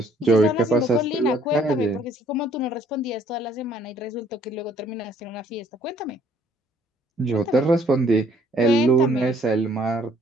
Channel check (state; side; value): normal; both; correlation 0.61